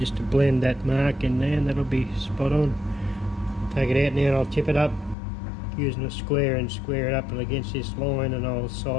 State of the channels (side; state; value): right; drops out; at 5.2 s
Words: to blend that mark in there, and that'll be spot on. Take it out now and I'll tip it up using a square and square it up against this line, and I'll